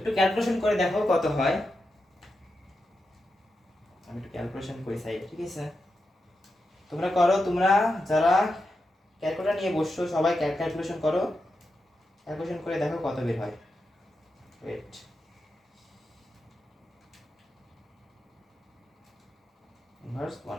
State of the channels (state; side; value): normal; both; correlation 0.88